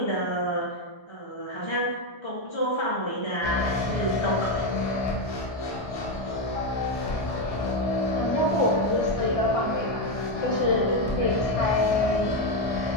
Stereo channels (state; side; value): late; right; 1.7 ms